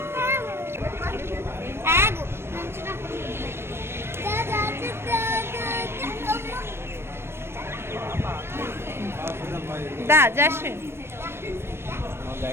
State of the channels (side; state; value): left; late; 0.12 ms